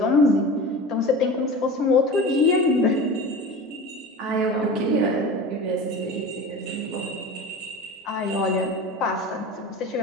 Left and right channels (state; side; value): normal; both; correlation 0.32